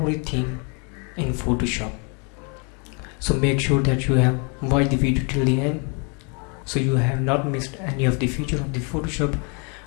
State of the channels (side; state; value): right; quieter; 35.7 dB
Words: in Photoshop. So make sure that you have watched the video till the end so you have not missed any of the feature of the Photoshop.